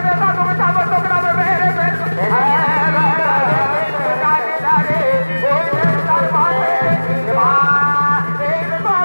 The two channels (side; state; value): both; inverted; correlation -1.00